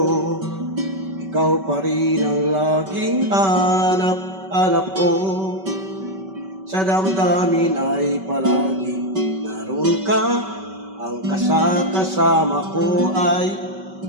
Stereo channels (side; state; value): left; late; 5.2 ms